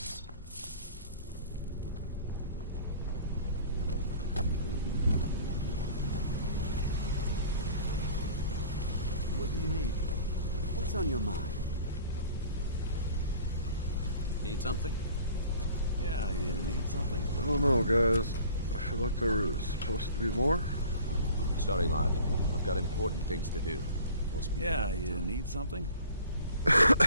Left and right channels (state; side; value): inverted; both; correlation -0.47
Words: What do you need? What's on your mind? Need something? Yeah, you need something? I don't know, guys. I feel like there was supposed to be more. Sorry, lad. I've got important things to do. We'll speak Yeah, another you time. need something?